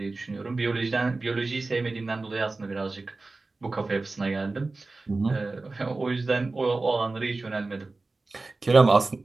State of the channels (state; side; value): quieter; left; 3.4 dB